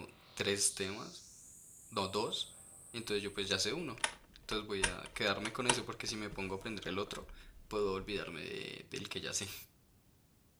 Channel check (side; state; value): both; identical; correlation 1.00